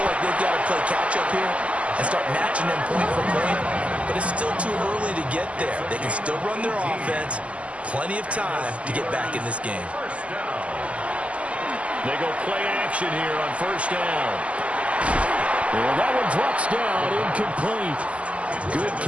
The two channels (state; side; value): late; left; 0.062 ms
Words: like they've got to play catch-up here and start matching them point for point. But it's still too early to get there. They can still run their offense. Plenty of time to get back in this game. They go play action here on first down. Well, that one drops down, incomplete. Good